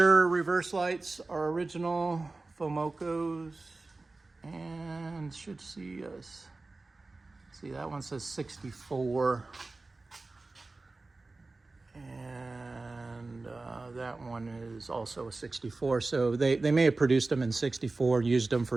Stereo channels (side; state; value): left; quieter; 3.4 dB